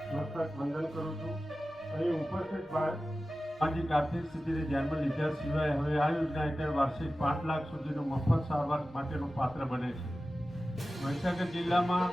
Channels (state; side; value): normal; both; correlation 0.95